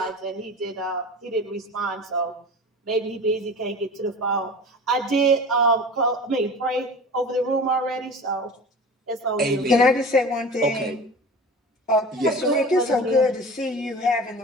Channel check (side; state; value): both; normal; correlation 0.36